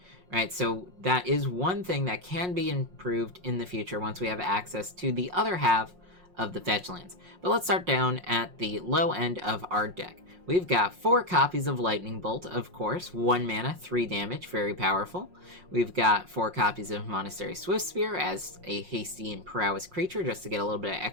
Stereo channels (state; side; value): late; left; 5.5 ms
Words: right? So that is one thing that can be improved in the future once we have access to the other half of the fetch lands. But let's start down at the low end of our deck. We've got 4 copies of Lightning Bolt, of course, 1 mana, 3 damage, very powerful. We've got 4 copies of Monastery Swiftspear as a hasty and prowess creature, just to get a little bit of